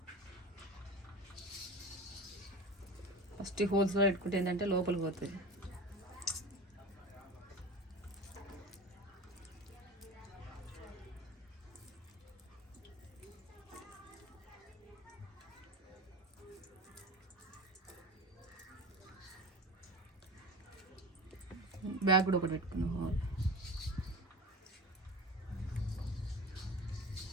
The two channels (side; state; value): both; normal; correlation 0.32